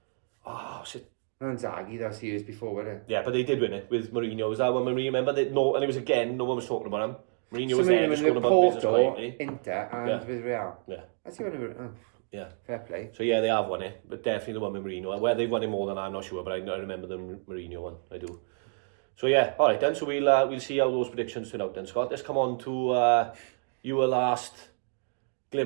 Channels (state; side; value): silent; left; 57 dB below the other